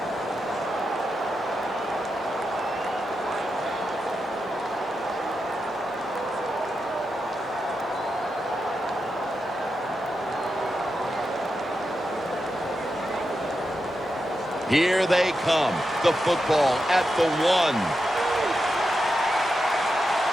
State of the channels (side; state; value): both; normal; correlation 0.88